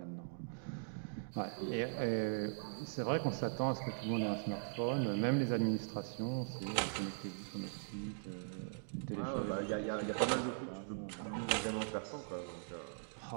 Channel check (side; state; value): left; silent; digital silence